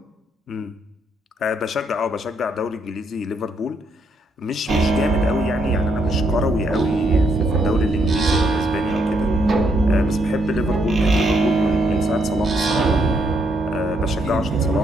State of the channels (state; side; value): normal; both; correlation 0.74